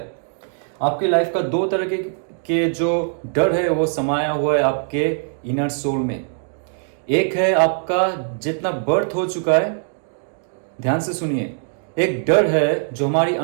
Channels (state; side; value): silent; left; digital silence